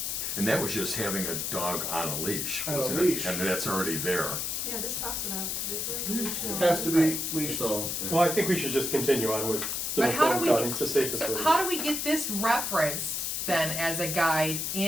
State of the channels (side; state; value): left; noise; hiss, 2 dB below the sound